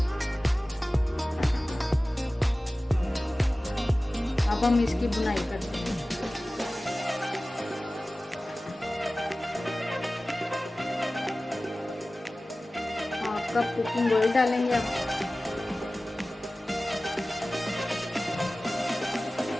अब हम इसकी बुनाई करते हैं। हाफ कप कुकिंग ऑयल डालेंगे अब।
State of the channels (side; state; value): both; normal; correlation 0.97